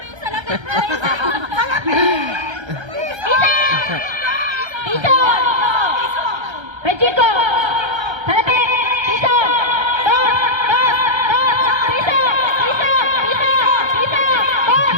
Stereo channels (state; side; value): late; left; 1.3 ms